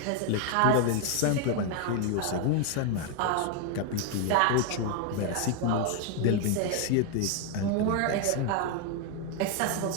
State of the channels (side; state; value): both; different; correlation 0.01